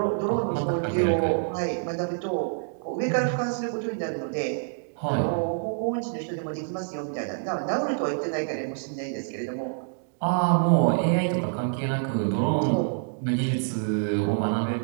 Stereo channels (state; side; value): silent; left; digital silence